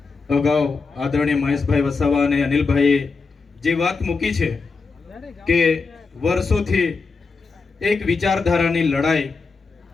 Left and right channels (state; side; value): quieter; right; 4.5 dB